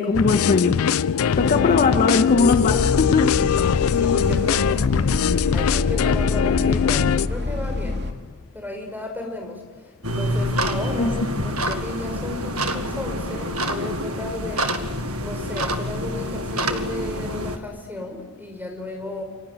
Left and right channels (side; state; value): right; quieter; 4.3 dB